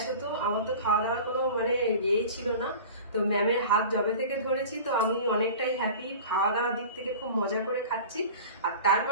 হতো, আমার তো খাওয়া দাওয়ার কোনো মানে ইয়েই ছিল না। তো ম্যামের হাত জবে থেকে ধরেছি, তো আমি অনেকটাই হ্যাপি। খাওয়া দাওয়ার দিক থেকে খুব মজা করে খাচ্ছি। আর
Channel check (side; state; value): both; inverted; correlation -0.38